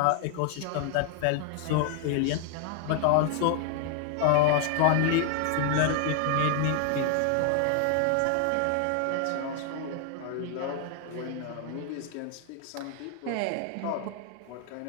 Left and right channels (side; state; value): both; different; correlation 0.00